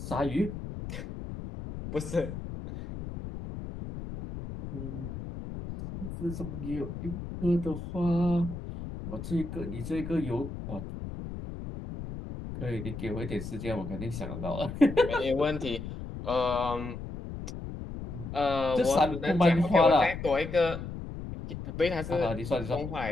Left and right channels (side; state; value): left; noise; rumble, 8 dB below the sound